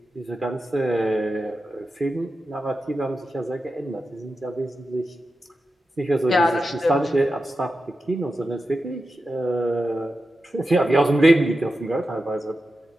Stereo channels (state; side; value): normal; both; correlation 0.91